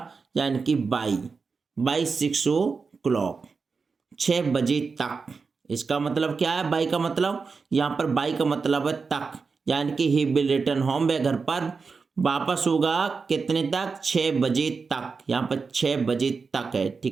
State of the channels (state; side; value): quieter; left; 4.8 dB